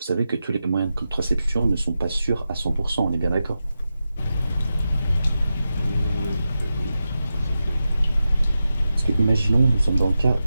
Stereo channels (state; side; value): inverted; both; correlation -0.91